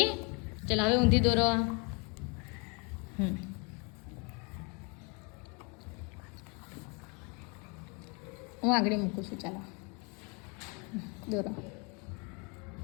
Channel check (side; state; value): right; quieter; 32.5 dB